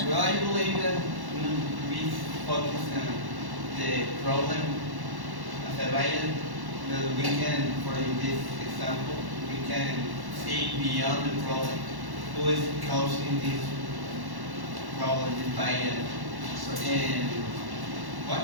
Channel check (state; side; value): late; left; 1.1 ms